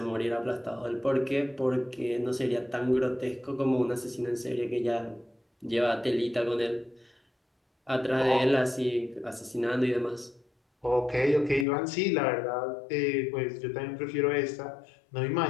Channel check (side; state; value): right; drops out; at 11.7 s